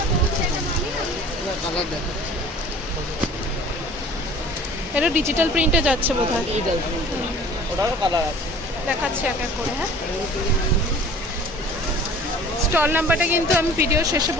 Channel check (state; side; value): normal; both; correlation 0.46